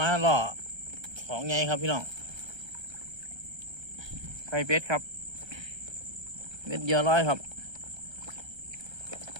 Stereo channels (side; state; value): left; late; 1.3 ms